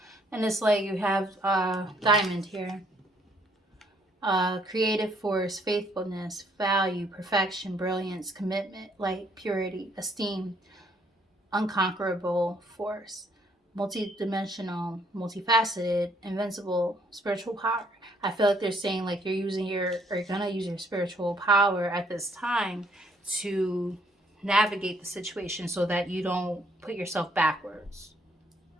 and it's like you have diamond here. Creative force, faithfulness, value, perfection, brilliance, commitment, light, purity, esteem, unconquerable force, multidimensional, multifaceted, invincible, spiritual power. I feel like they're saying like you're gonna use your spiritual power at this time to navigate the situation so that you don't put yourself backwards.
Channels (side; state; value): both; normal; correlation 0.67